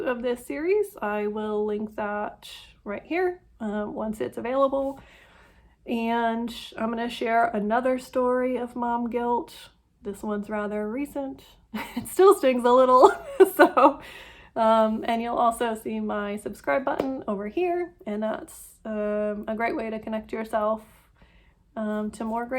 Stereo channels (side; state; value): both; identical; correlation 1.00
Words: of this series. I will link that right here once it's available. And I'm going to share another story of mom guilt. This one's rather recent. It still stings a little. So, and you'll also see my subscribe button over here. And that's a great way to connect yourself to more